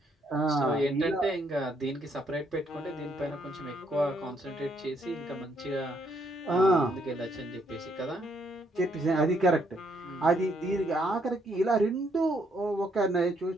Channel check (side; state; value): both; normal; correlation 0.71